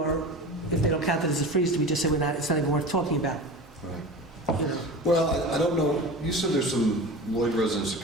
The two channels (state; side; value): normal; both; correlation 0.32